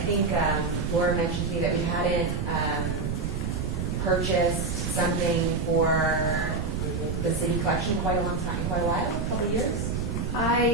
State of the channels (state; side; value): noise; right; rumble, 2 dB below the sound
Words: think Laura mentioned to me that we hadn't purchased something for collection in quite a long time, quite a while, a couple of years?